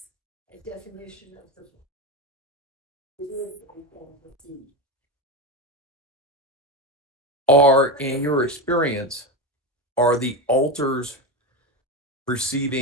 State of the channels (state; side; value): normal; both; correlation 0.17